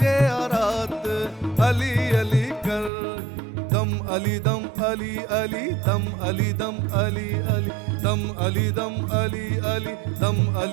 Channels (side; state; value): left; drops out; at 2.9 s